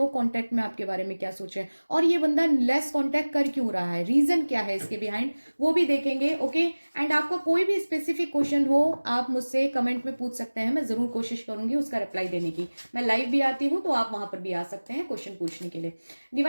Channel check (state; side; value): inverted; both; correlation -1.00